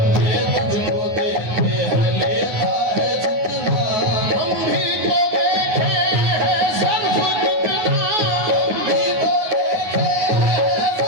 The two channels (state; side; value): late; left; 9.4 ms